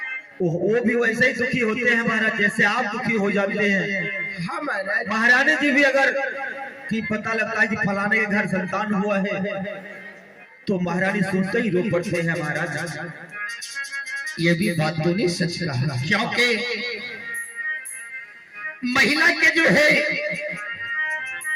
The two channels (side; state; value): both; identical; correlation 1.00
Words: वो भी वैसे ही दुखी होते हैं महाराज जैसे आप दुखी हो जाते हैं। हाँ महाराज, महारानी जी भी अगर कि पता लगता है कि फलाने के घर संतान हुआ है तो महारानी सुनते ही रो पड़ते हैं महाराज। ये भी बात तो नहीं सच कहा, क्योंकि महिला के जो है